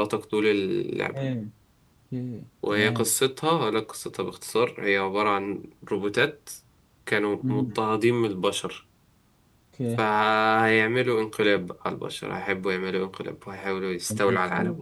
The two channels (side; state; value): both; identical; correlation 1.00